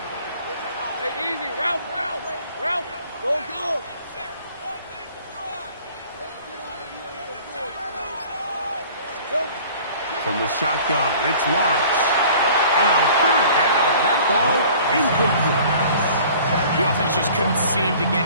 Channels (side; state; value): both; inverted; correlation -0.49